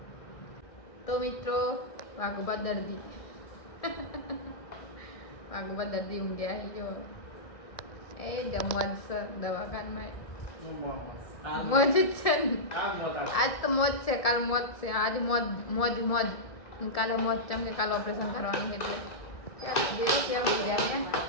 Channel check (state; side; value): late; right; 1.7 ms